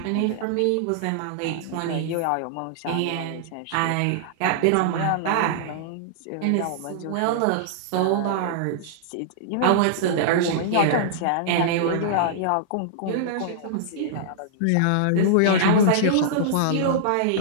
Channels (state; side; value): different; both; correlation -0.02